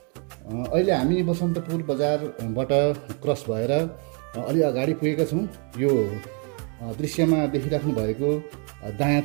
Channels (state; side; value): quieter; left; 37.7 dB